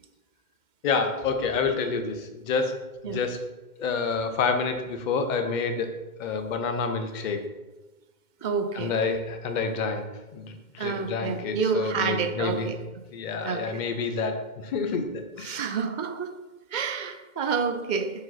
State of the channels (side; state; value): right; late; 2.1 ms